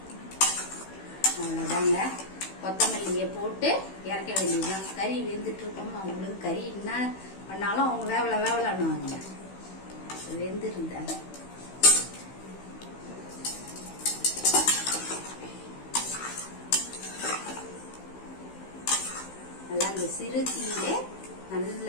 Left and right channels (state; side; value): late; right; 16 ms